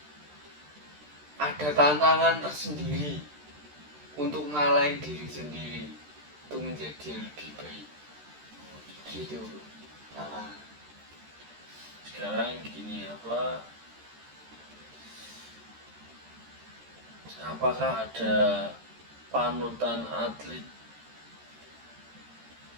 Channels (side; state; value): left; late; 13 ms